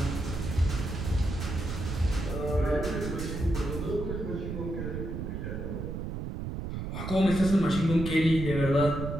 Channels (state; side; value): noise; right; rumble, 5 dB below the sound